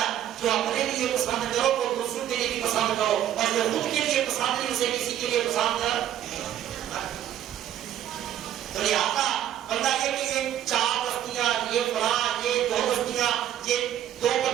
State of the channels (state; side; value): quieter; left; 11.1 dB